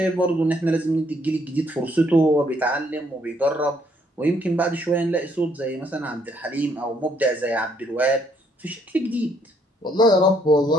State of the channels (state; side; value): normal; both; correlation 0.69